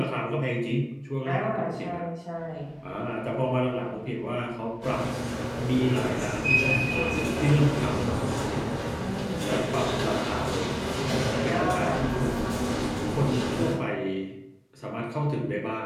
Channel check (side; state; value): both; identical; correlation 1.00